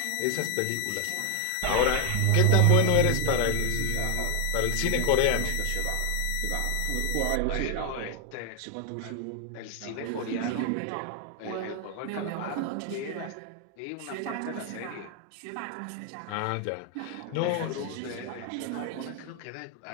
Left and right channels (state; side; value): different; both; correlation 0.00